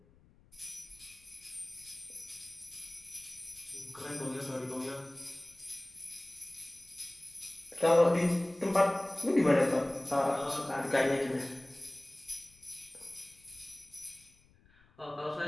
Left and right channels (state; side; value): noise; left; rumble, 29 dB below the sound